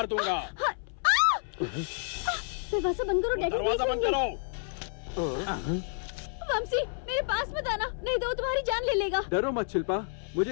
दूंगा। दरवाजा बंद करो डैडी। दरवाजा बंद करो। वंशी मेरे पास मत आना, नहीं तो वो तुम्हारी जान ले लेगा। डरो मत शिल्पा,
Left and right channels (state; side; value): silent; right; 58 dB below the other